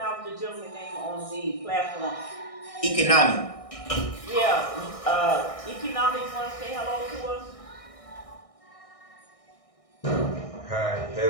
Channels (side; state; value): right; late; 1.6 ms